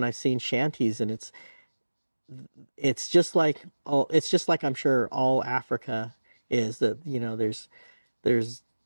I've seen shanties, and it's just like I'm sure all Africa is. That, you know, there's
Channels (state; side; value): inverted; both; correlation -1.00